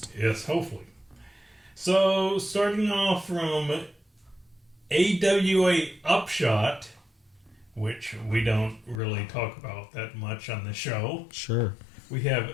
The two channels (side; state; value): right; drops out; at 9.0 s